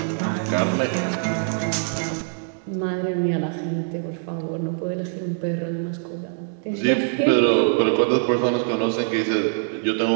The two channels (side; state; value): left; silent; digital silence